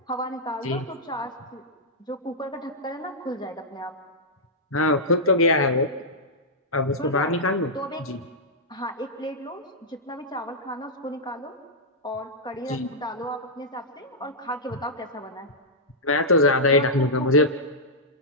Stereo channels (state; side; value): normal; both; correlation -0.09